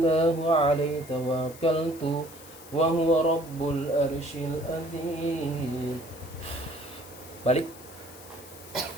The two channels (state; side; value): noise; left; hiss, 19 dB below the sound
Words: هو عليه توكلت وهو رب العرش العظيم. Balik.